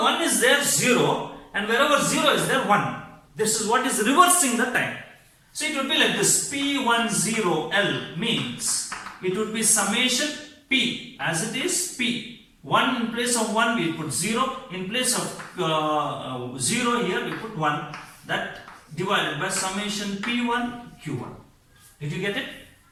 1 is there 0 and wherever 0 is there 1. This is what is reversing the time. So it would be like this. P10L means it would be summation P as it is P. 1 in place of 1 we put 0. In place of 0 here we put 1. That divided by summation P1 Q1. Did you get it?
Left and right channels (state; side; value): identical; both; correlation 1.00